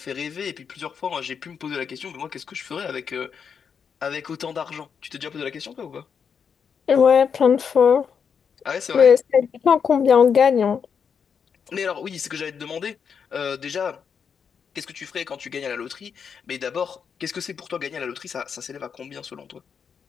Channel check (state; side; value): quieter; right; 6.8 dB